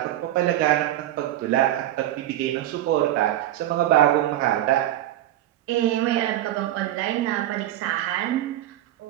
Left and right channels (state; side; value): quieter; left; 13.4 dB